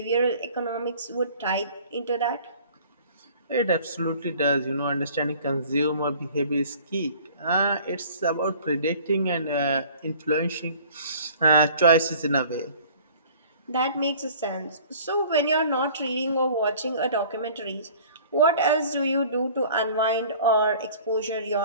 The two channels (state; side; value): inverted; both; correlation -0.49